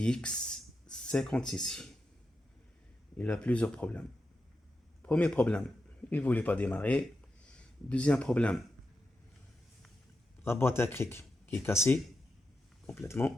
56. Il a plusieurs problèmes. Premier problème, il ne voulait pas démarrer. Deuxième problème, la boîte à cric qui est cassée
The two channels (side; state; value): both; normal; correlation 0.88